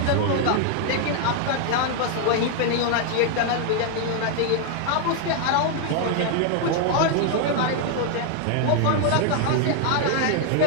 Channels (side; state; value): both; different; correlation 0.00